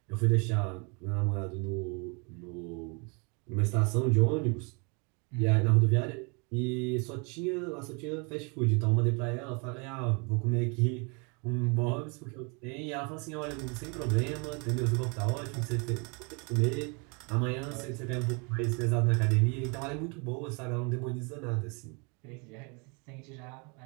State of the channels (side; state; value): left; quieter; 32.9 dB